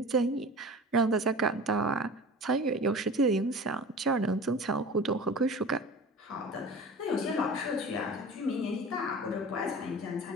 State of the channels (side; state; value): both; normal; correlation 0.37